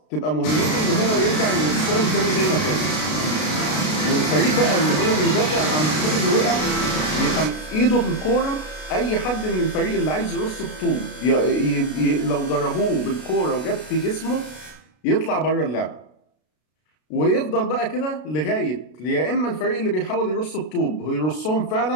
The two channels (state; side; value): late; right; 33 ms